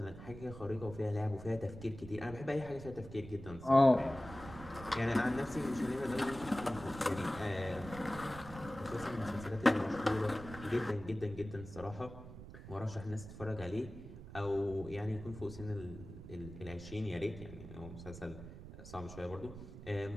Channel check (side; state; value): right; noise; rumble, 13 dB below the sound